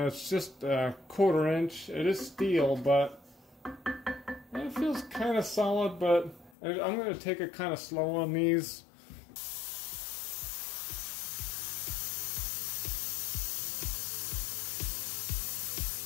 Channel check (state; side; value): drops out; right; at 6.5 s